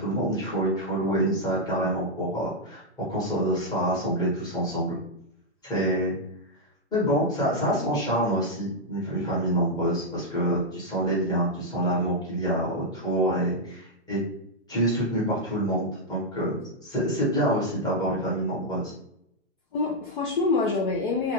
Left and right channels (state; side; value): normal; both; correlation -0.02